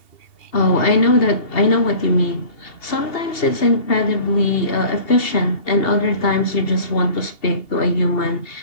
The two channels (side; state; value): right; late; 2.7 ms